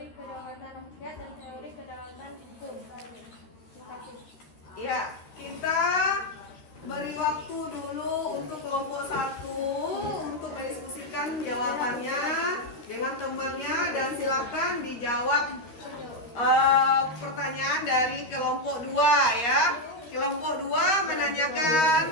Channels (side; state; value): right; late; 13 ms